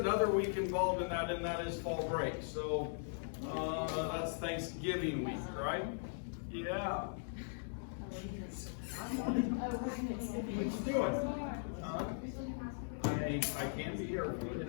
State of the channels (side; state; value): right; silent; digital silence